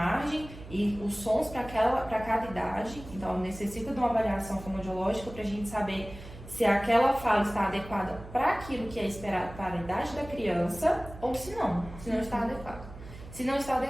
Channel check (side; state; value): right; noise; hum, 15 dB below the sound